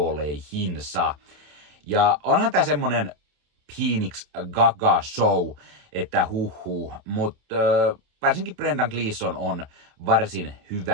Ja onhan tää semmonen Phoenix Gaga show, että mutta varsinkin Brendan Gleeson on varsin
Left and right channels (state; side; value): late; left; 28 ms